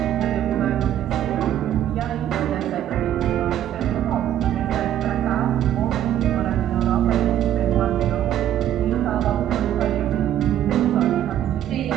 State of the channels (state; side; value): quieter; left; 11.3 dB